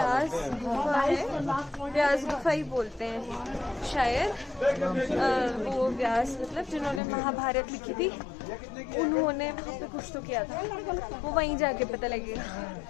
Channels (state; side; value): drops out; right; at 7.0 s